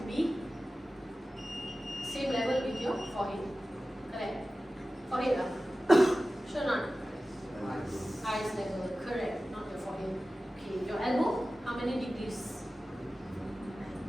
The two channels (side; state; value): both; normal; correlation 0.95